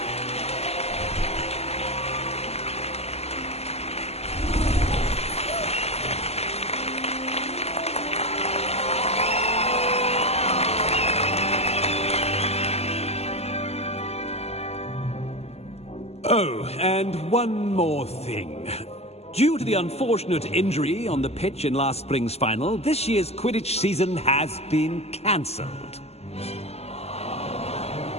Oh, and one more thing. Due to the unfortunate injury on the pitch in last spring's final, this year's Quidditch season has been cancelled.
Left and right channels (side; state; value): right; late; 0.30 ms